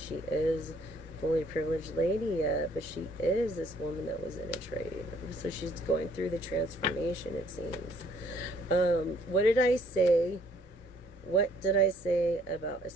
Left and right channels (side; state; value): both; normal; correlation 0.62